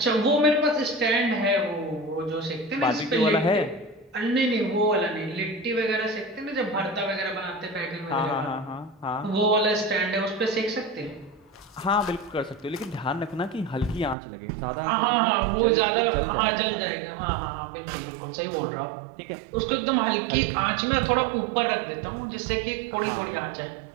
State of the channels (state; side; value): drops out; left; at 14.2 s